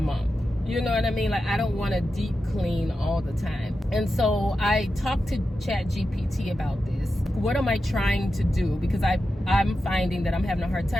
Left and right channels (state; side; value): normal; both; correlation 0.90